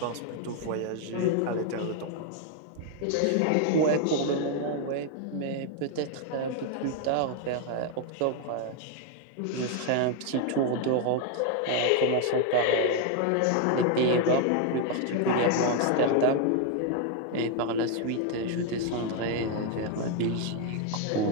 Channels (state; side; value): different; both; correlation 0.00